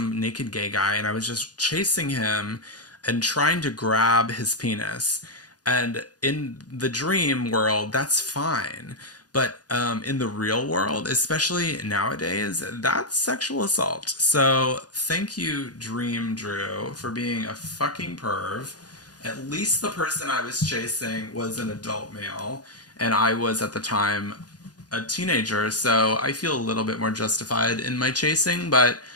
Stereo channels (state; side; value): late; right; 0.69 ms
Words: naked gay guy, and I was just chasing him and trying to grab his penis. And in the dream world, that's fine. But in the real world, especially nowadays, that's sexual assault. So thank you, Dream Drew, for being a fucking perv. At least the person I was chasing was an adult male, and I was at the time a teenager, so I feel a little bit more justified in my chasing, but